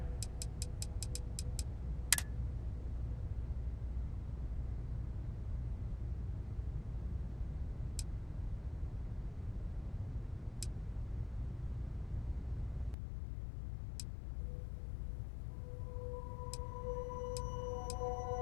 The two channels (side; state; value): right; drops out; at 13.0 s